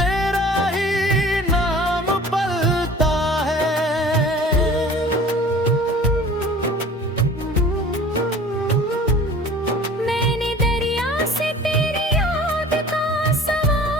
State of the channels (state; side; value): normal; both; correlation 0.45